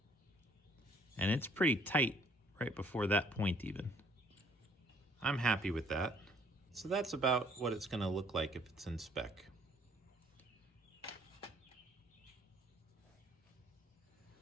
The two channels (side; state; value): both; normal; correlation 0.61